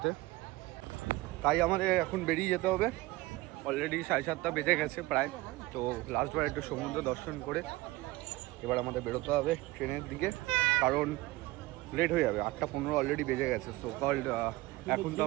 তাই আমাদের এখন বেরিয়ে যেতে হবে। অলরেডি 7:30 বেজে গেছে প্রায়। তো লাস্টবার একটু সমুদ্র দর্শন করে এবার আমাদের বেরোতে হবে ট্রেনের দিকে, কারণ লেট হয়ে যাবে। 8:15 অলরেডি বেজে গেছে। সো কল্ড এখন তো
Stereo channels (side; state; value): left; quieter; 19.7 dB